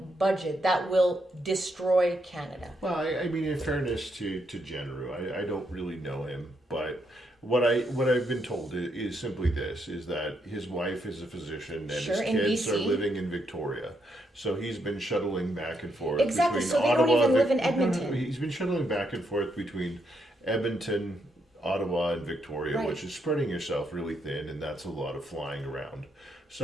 budget that will destroy Canada. Well, I mean, in fairness to Genereux, I don't really know him, but what I've been told is simply this: is that his wife is a physician and his kids are living in Victoria, so he's been shuttling back and forth. Exactly. Between So they Ottawa don't even live in Edmonton. No, he's been shuttling back and forth between Edmonton, Ottawa, and Victoria, Right. which is spreading yourself really thin, and that's a lot of flying around.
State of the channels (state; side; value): normal; both; correlation 0.78